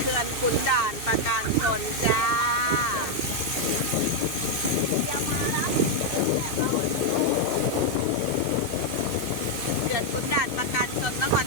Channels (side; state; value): right; late; 2.6 ms